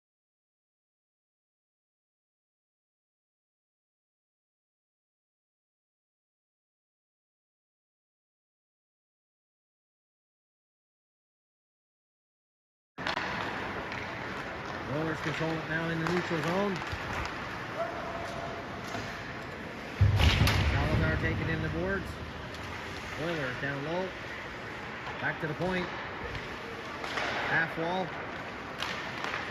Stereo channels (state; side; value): identical; both; correlation 1.00